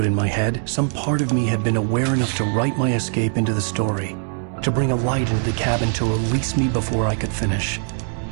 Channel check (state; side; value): silent; left; 55 dB below the other